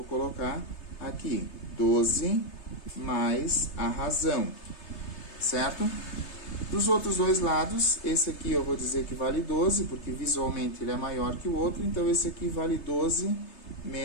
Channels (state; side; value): late; right; 3.3 ms